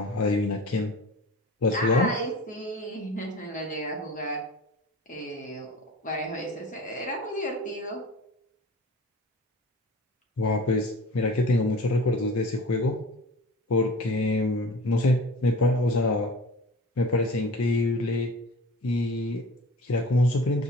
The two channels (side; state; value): both; normal; correlation 0.40